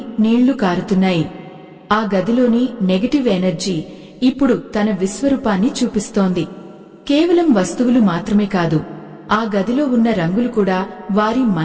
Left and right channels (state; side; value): identical; both; correlation 1.00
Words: నీళ్లు కారుతున్నాయి. ఆ గదిలోని నెగటివ్ ఎనర్జీ ఇప్పుడు తన విశ్వరూపాన్ని చూపిస్తోంది. కేవలం వస్తువులు మాత్రమే కాదు, ఆ గదిలో ఉన్న రంగులు కూడా వారి